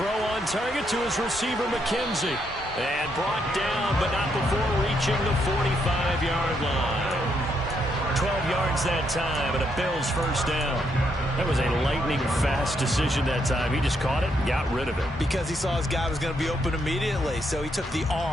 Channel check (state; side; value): normal; both; correlation 0.76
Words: on target to his receiver, McKenzie. And brought down, but not before reaching the 45-yard line. 12 yards that time, and a Bills first down. That was a lightning-fast decision that time. He just caught it and got rid of it. Because he saw his guy was going to be open immediately. So he took the